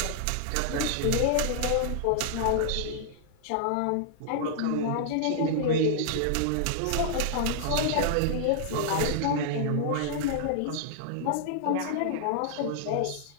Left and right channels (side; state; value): both; different; correlation -0.01